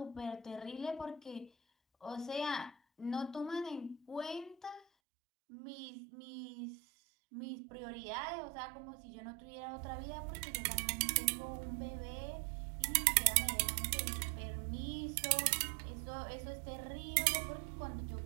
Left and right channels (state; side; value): drops out; left; at 4.9 s